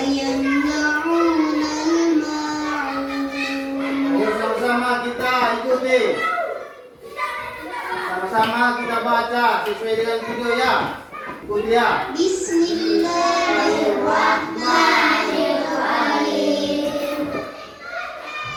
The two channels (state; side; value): identical; both; correlation 1.00